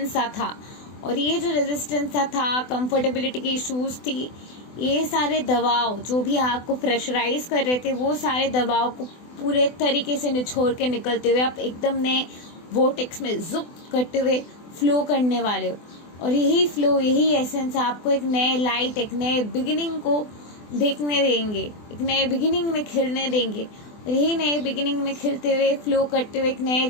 सा था, और ये जो रेजिस्टेंस सा था, कंफर्टेबिलिटी की इश्यूज थी, ये सारे दबाव जो भी आपको प्रेशराइज कर रहे थे, वो सारे दबाव को पूरे तरीके से निचोड़ के निकलते हुए आप एकदम नए वोटेक्स में जुप करते हुए फ्लो करने वाले हो। और यही फ्लो, यही एसेंस आपको एक नए लाइट, एक नए बिगिनिंग को देखने देंगे, एक नए बिगिनिंग में खिलने देंगे। और यही नए बिगिनिंग में खिलते हुए, फ्लो करते हुए, एक नए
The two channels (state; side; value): late; right; 24 ms